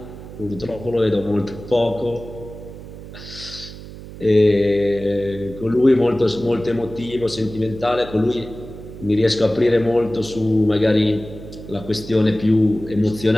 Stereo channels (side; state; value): right; noise; hum, 14 dB below the sound